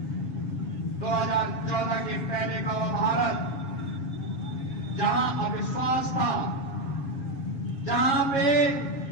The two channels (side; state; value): right; late; 7.3 ms